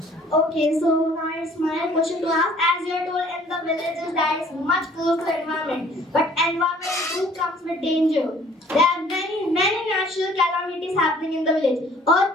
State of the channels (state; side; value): normal; both; correlation 0.55